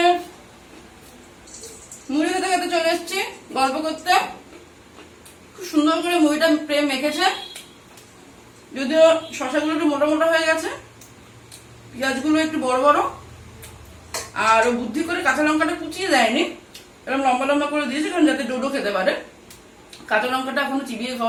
মুড়ি খেতে খেতে চলে এসেছি গল্প করতে। খুব সুন্দর করে মুড়িটা প্রেম মেখেছে, যদিও শশাগুলো একটু মোটা মোটা হয়ে গেছে, পেঁয়াজগুলো একটু বড় বড়, আর ও বুদ্ধি করে কাঁচা লঙ্কাটা কুচিয়ে দেয়নি, এরকম লম্বা লম্বা করে দিয়েছে কারণ যাতে ডোডো খেতে পারে। কাঁচা লঙ্কাটা এখনো চিবিয়ে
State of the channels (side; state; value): both; identical; correlation 1.00